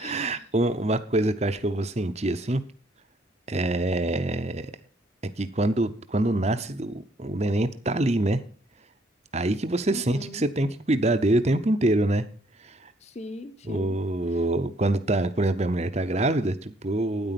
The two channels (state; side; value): normal; both; correlation 0.66